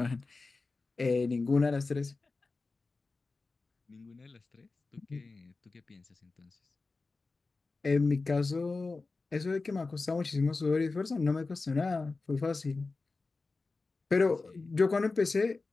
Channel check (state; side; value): quieter; right; 3.8 dB